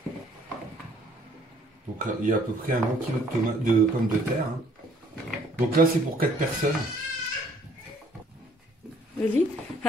Donc il y a à peu près un bon kilo de pommes de terre, hein. Donc là c'est pour 4 personnes. Vas-y.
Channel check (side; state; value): both; normal; correlation 0.61